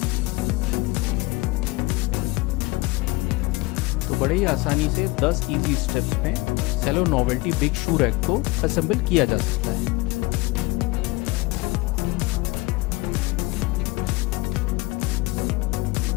तो बड़े ही आसानी से 10 इजी स्टेप्स में सेलो नोवेल्टी बिग शू रैक को असेंबल किया जा सकता है।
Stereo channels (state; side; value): quieter; right; 22.7 dB